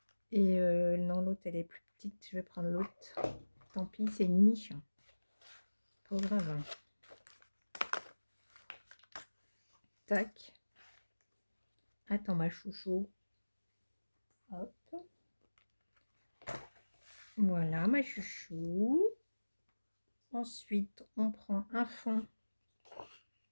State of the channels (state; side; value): inverted; both; correlation -1.00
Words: Et non, l'autre, elle est plus petite. Je vais prendre l'autre. Tant pis, c'est une niche. Pas grave. Hein. Tac. Attends, ma chouchou. Hop. Voilà, ma chouchou. Ensuite, on prend un fond.